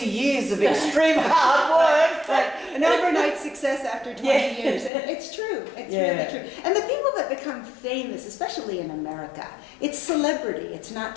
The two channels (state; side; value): drops out; right; at 4.9 s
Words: years of extreme hard work." Right. An overnight success after 20 Yeah. years. And it's true. It's Yeah. really true. And the people that become famous, especially in America, it's celebrity. It's not